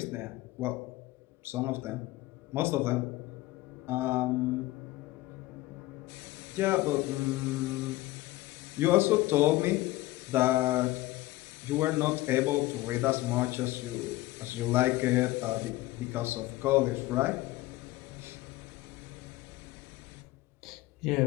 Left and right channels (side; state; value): right; quieter; 18.2 dB